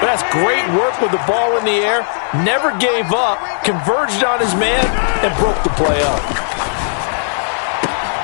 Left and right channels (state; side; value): silent; right; digital silence